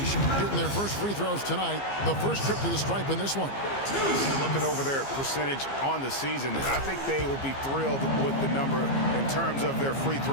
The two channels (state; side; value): late; right; 15 ms